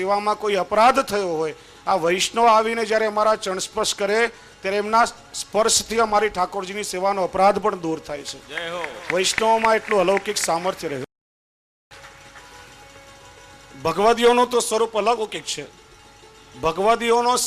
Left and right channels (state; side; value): identical; both; correlation 1.00